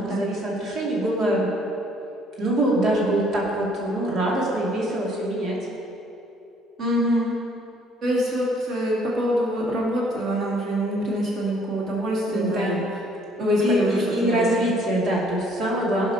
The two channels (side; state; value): both; normal; correlation 0.62